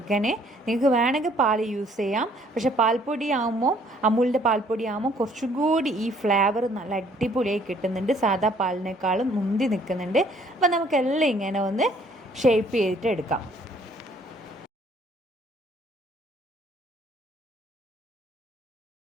നിങ്ങൾക്ക് വേണമെങ്കിൽ പാൽ യൂസ് ചെയ്യാം. പക്ഷേ അമൂലിൻ്റെ പാൽപ്പൊടി ആകുമ്പോൾ കുറച്ചും കൂടി ഈ ഫ്ലേവർ നല്ല അടിപൊളിയായി കിട്ടുന്നുണ്ട്. സാധാ പാലിനേക്കാളും മുന്തി നിൽക്കുന്നുണ്ട്. അപ്പം നമുക്കെല്ലാം ഇങ്ങനെ ഒന്ന് ഷേപ്പ് ചെയ്തിട്ട് എടുക്കാം.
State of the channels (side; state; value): both; normal; correlation 0.61